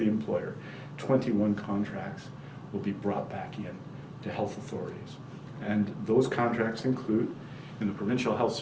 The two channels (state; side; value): identical; both; correlation 1.00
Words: employer. 21 contracts will be brought back in to health authorities. And those contracts include, in the Provincial Health